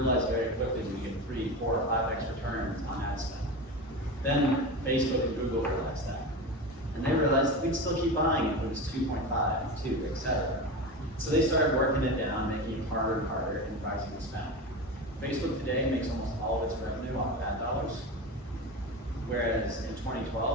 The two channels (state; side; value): normal; both; correlation 0.25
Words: very quickly we get 3, 4, or 5x returns on ad spend. Then Facebook and Google realized that. And they realized we'd still keep buying if it was 2.5, 2, etc. So they started working it down, making it harder and harder, and rising the spend. Facebook today makes almost all of its revenue off ad dollars, whereas in